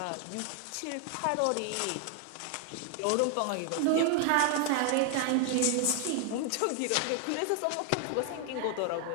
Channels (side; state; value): both; different; correlation 0.00